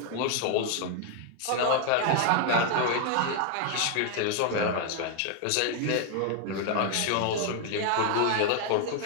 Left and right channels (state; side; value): different; both; correlation 0.01